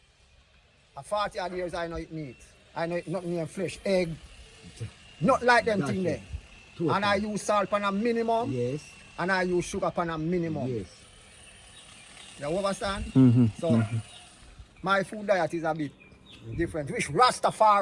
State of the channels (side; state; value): both; identical; correlation 1.00